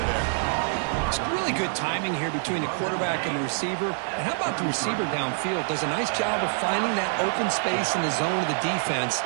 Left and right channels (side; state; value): left; silent; 61 dB below the other